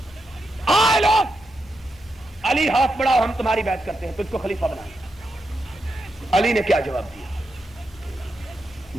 آئے لوگ, علی ہاتھ بڑھاؤ, ہم تمہاری بیعت کرتے ہیں, تجھ کو خلیفہ بنائیں. علی نے کیا جواب دیا؟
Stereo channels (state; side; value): normal; both; correlation 0.85